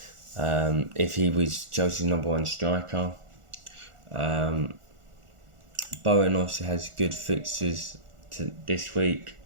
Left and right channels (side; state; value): left; late; 1.4 ms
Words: if he was Chelsea's number 1 striker. Bowen obviously has good fixtures this week.